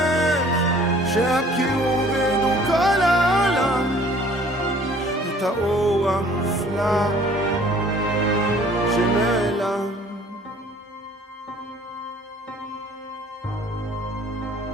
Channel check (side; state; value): both; normal; correlation 0.54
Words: שיכירו וידעו כל העולם את האור המופלא שנעלם?